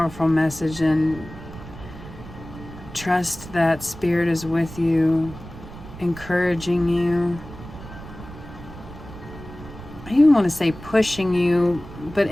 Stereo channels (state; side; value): noise; right; rumble, 15 dB below the sound